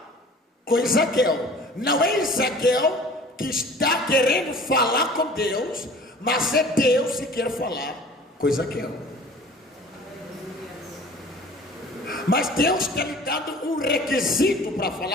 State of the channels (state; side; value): normal; both; correlation 0.46